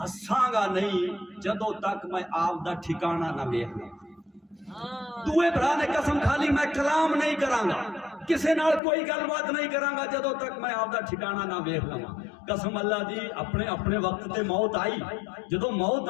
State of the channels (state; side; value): drops out; right; at 8.8 s